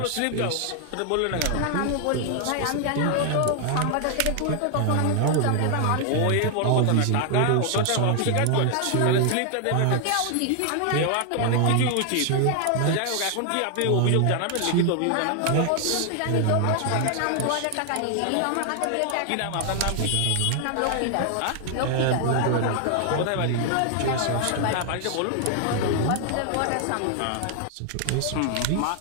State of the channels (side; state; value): both; different; correlation 0.00